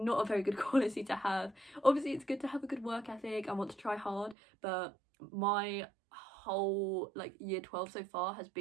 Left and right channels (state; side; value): drops out; left; at 4.4 s